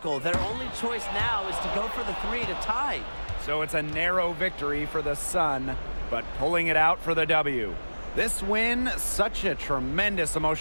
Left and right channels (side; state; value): both; inverted; correlation -1.00